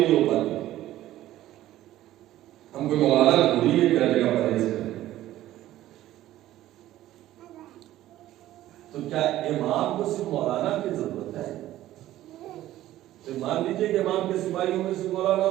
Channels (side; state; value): left; quieter; 14.2 dB